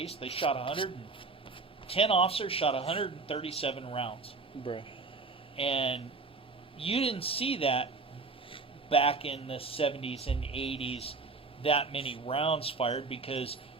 they shot 10 officers shot 137 rounds. Bruh. And you didn't see that back in the 70s and 80s, that many rounds fired, because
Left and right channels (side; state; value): left; quieter; 4.0 dB